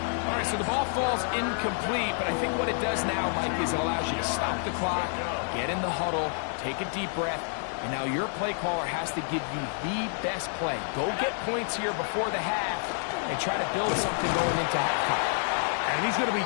All right, so the ball falls incomplete, but I think what it does now, Mike, is it allows you to stop the clock, get in the huddle, take a deep breath, and now your play caller has to give you the best play. Go get points here before the half and try to build something going into halftime. And he's going to be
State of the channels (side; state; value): right; silent; 57 dB below the other